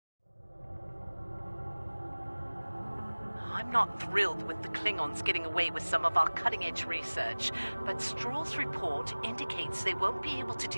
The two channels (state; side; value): inverted; both; correlation -1.00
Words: I'm not thrilled with the Klingons getting away with some of our cutting-edge research, but Stroll's report indicates they won't be able to